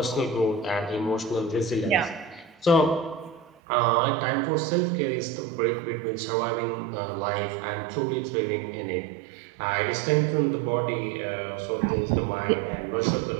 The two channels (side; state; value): left; drops out; at 3.5 s